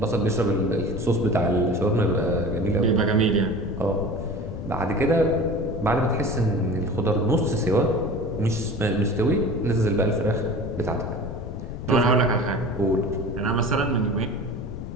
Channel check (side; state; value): left; noise; rumble, 7 dB below the sound